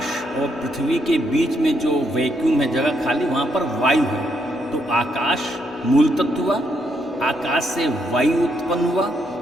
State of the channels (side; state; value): both; normal; correlation 0.76